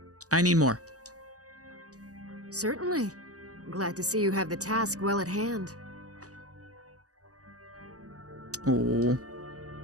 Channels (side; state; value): left; late; 0.66 ms